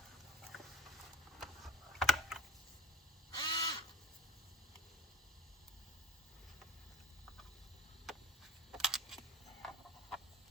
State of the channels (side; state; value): both; normal; correlation 0.41